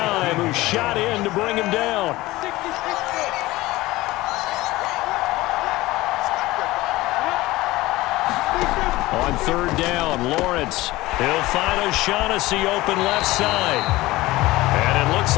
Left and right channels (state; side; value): quieter; right; 18.8 dB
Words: who shot in to bring him down. On 3rd down, Lawrence. He'll find O'Shaughnessy open left side. And it looks